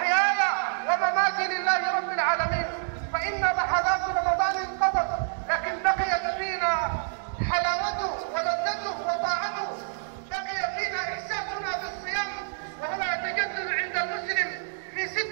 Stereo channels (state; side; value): silent; left; digital silence